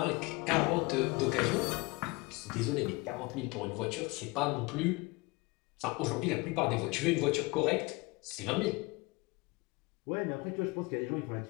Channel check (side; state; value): right; quieter; 24.9 dB